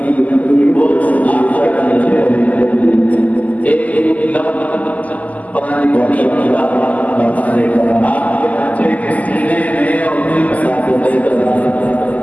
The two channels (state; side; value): late; right; 0.075 ms